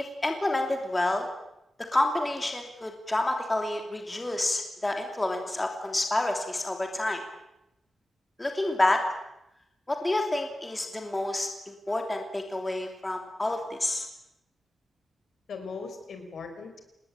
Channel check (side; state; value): both; normal; correlation 0.96